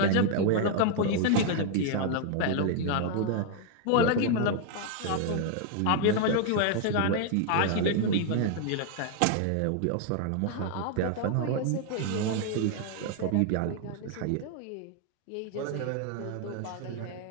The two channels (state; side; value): different; both; correlation 0.00